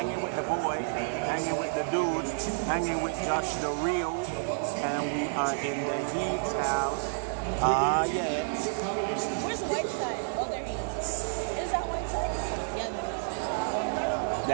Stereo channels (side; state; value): left; silent; digital silence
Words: with the boy, hanging with the dudes, hanging with Josh the Real, and we are in the Heat's house. Yeah. Where's Whiteside? Oh, there he is. Is that Whiteside? Yeah, there is.